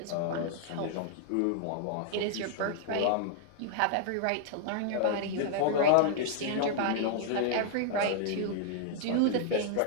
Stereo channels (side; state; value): both; different; correlation -0.01